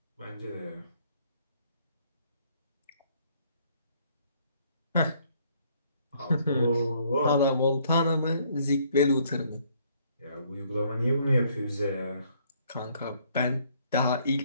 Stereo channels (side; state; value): both; inverted; correlation -0.65